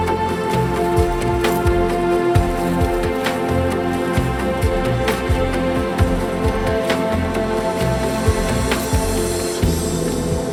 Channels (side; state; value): both; identical; correlation 1.00